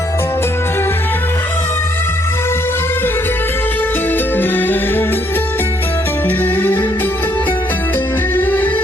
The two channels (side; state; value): both; normal; correlation 0.69